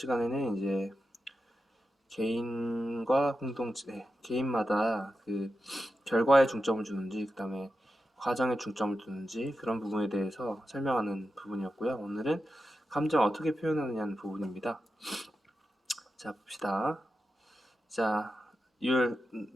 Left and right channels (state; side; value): normal; both; correlation 0.90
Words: 이제 개인과 공동체, 개인마다 그 결과에 중점을 주는지, 그 다음에 과정에 중점을 두는지 그런 부분에 대해서 설명하는 부분이었고요. 오늘은 감정 어떻게 표현하느냐는 부분입니다. 자, 봅시다. 자, the